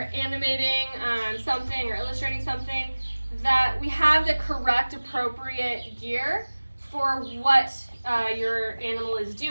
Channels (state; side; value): inverted; both; correlation -1.00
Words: animating something or illustrating something that we have the correct, appropriate gear for what your animal is